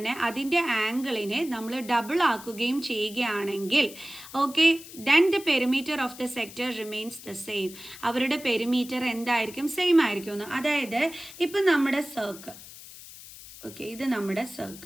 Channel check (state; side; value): noise; left; hiss, 16 dB below the sound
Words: അതിൻ്റെ ആംഗിളിനെ നമ്മൾ ഡബിൾ ആക്കുകയും ചെയ്യുകയാണെങ്കിൽ okay, then the perimeter of the sector remains the same. അവരുടെ പെരിമീറ്റർ എന്തായിരിക്കും? സെയിം ആയിരിക്കും. അതായത് ഇപ്പം നമ്മുടെ സർക്കിൾ, ഓക്കെ, ഇത് നമ്മുടെ